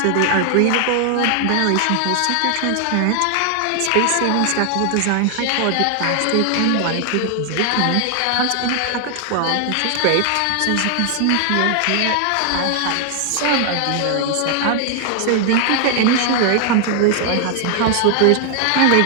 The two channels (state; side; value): different; both; correlation 0.00